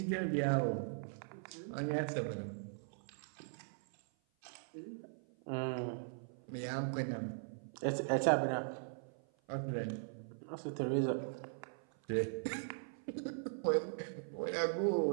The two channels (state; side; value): silent; left; 51 dB below the other